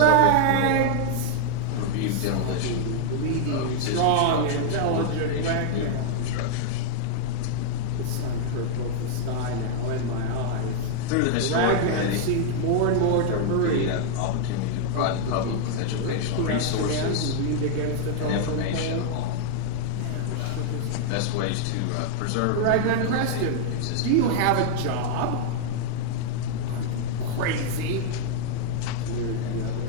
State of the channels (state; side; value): different; both; correlation 0.00